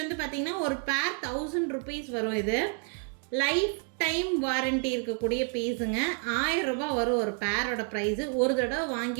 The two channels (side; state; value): left; quieter; 39.1 dB